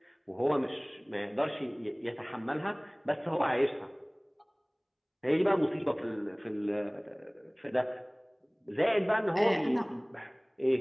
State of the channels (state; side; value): identical; both; correlation 1.00